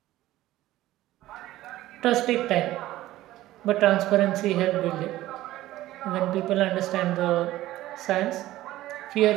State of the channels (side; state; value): left; quieter; 15.6 dB